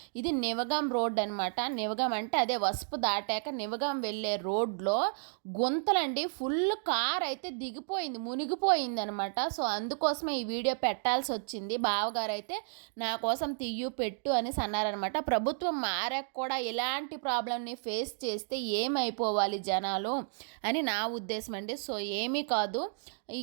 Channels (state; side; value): silent; left; digital silence